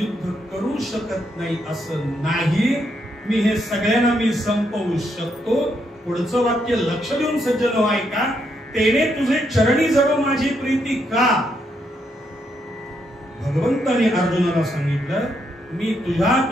करू शकत नाही असं नाही, मी हे सगळ्यांना मी संपवू शकतो. पुढचं वाक्य लक्ष देऊन सज्जन हो ऐका. तेने तुझे चरणी जडो माझी प्रीती का. भगवंताने अर्जुनाला सांगितलं, मी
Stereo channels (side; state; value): both; normal; correlation 0.77